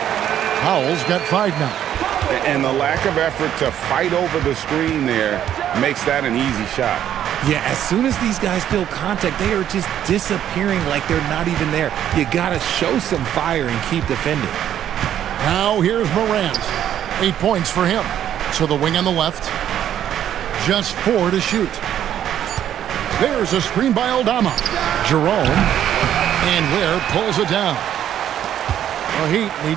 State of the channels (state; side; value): quieter; left; 10.6 dB